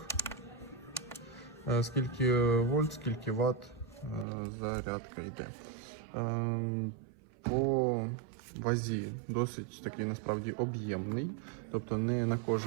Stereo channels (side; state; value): left; drops out; at 4.2 s